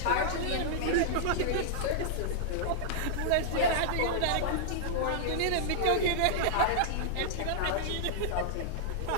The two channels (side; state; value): both; different; correlation -0.01